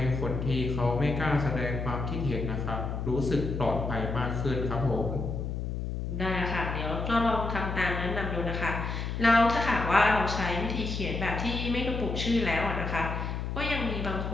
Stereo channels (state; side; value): noise; left; hum, 3 dB below the sound